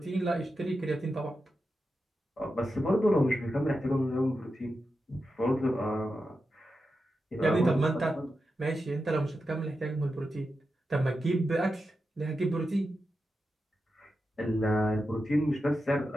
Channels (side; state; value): both; normal; correlation 0.89